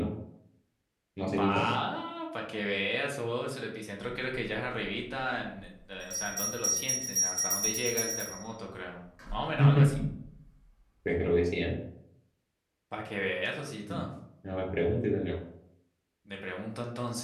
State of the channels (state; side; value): identical; both; correlation 1.00